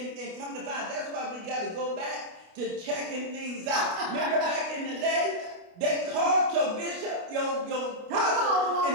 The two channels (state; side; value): late; left; 29 ms